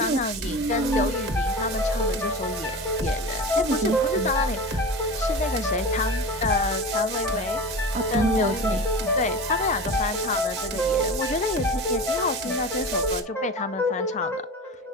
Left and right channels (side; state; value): both; normal; correlation 0.30